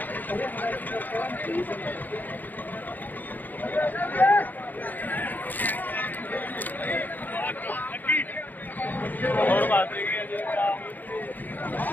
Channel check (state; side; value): late; right; 0.085 ms